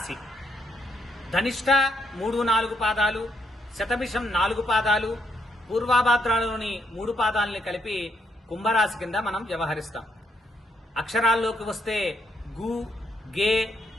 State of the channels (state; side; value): normal; both; correlation 0.75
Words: ధనిష్ట 3-4 పాదాలు, శతభిషం 4 పాదాలు, పూర్వాభాద్రాలలోని 3 పాదాలని కలిపి కుంభరాశి కింద మనం వ్యవహరిస్తాం. అక్షరాల్లోకి వస్తే గు, గే,